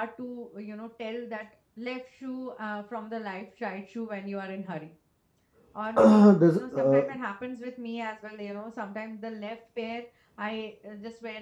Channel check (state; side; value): identical; both; correlation 1.00